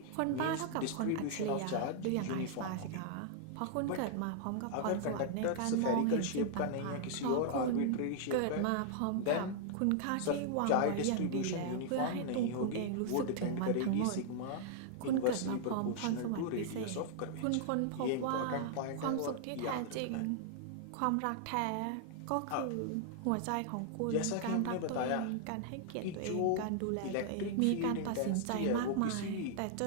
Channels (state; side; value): different; both; correlation -0.01